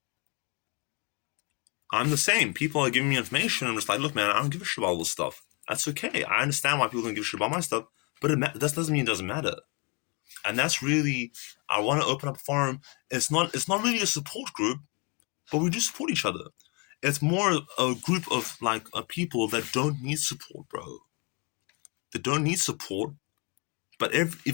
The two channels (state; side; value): quieter; right; 31.5 dB